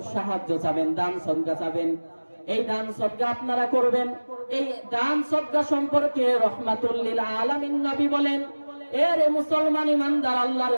সাহায্য চাবেন, দান সদকা চাবেন, এই দান সদকা আপনারা করবেন। এই দান সদকা সম্পর্কে রহমাতুল লিল আলামিন নবী বলেন, এরে মুসলমান ইমানদার আল্লাহর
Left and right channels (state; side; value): inverted; both; correlation -1.00